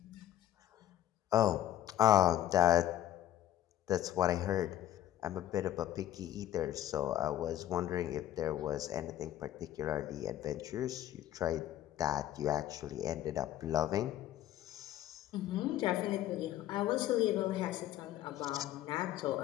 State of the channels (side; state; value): right; quieter; 12.4 dB